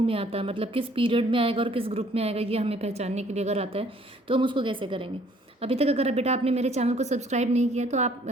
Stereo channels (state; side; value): normal; both; correlation 0.60